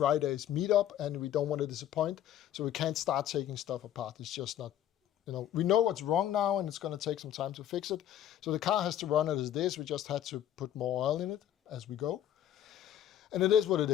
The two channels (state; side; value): quieter; right; 11.1 dB